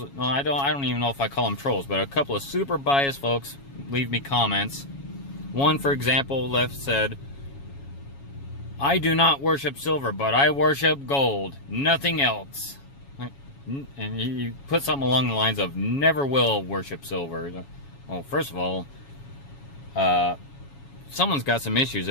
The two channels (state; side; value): late; right; 7.2 ms